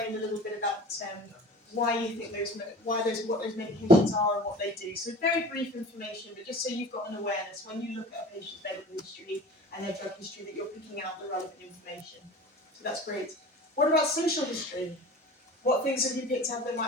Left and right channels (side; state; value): both; normal; correlation 0.39